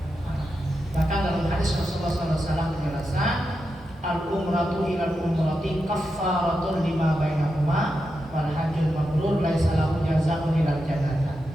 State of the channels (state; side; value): normal; both; correlation 0.88